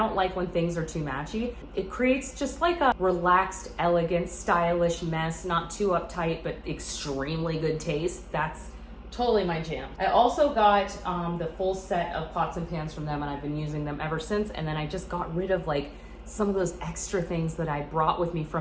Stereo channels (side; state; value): both; identical; correlation 1.00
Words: like when things are too matchy. It creates just like a relaxed, elegant, stylish mess, not too uptight, but extremely good taste. That's totally my jam. I also got the full set of pots and pans from them, and I've been using them ever since. And then I just got rid of like some of those extra things that I brought with me